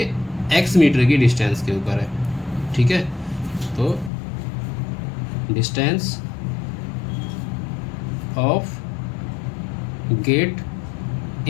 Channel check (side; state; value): right; drops out; at 4.1 s